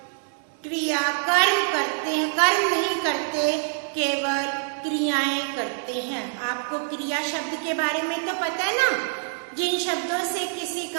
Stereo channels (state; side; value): silent; left; digital silence